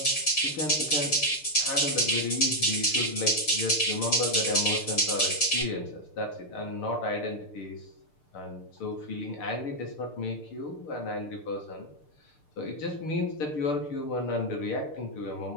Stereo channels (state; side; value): late; right; 6.7 ms